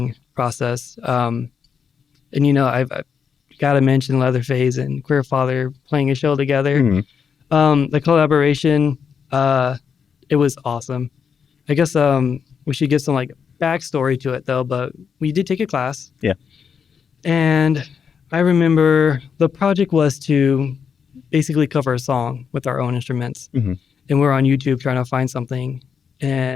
process, and I've got to mention Leatherface and Queer Father playing a show together. Mhm. The collaboration, it was awesome. I guess we should give some like backstory to it though, but we did take a class. Yeah. And I remember the project was to basically cover a song with our own instruments. Mhm. And we're on YouTube trying to find something.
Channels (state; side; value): quieter; right; 6.7 dB